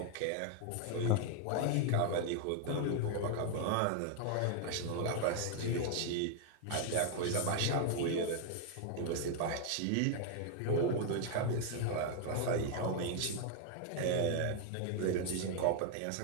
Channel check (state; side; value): different; both; correlation 0.00